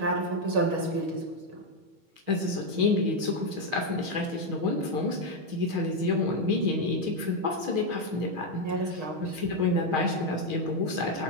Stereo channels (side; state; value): left; late; 6.4 ms